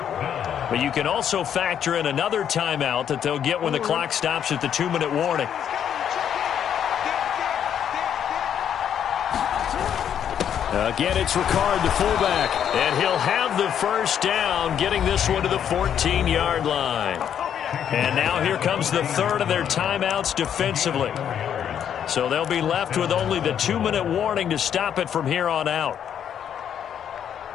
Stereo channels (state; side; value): quieter; right; 9.1 dB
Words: But you can also factor in another timeout that they'll get when the clock stops at the 2-minute warning. Again, it's Ricard, the fullback, and he'll have the first down, getting this one to the 14-yard line. And now here comes the third of their timeouts defensively. So they'll be left with only the 2-minute warning to stop it from here on out.